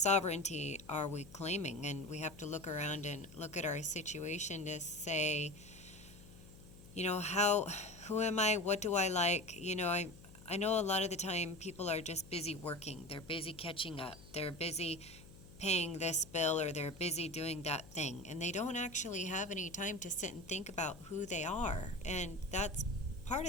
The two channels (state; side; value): noise; left; hum, 19 dB below the sound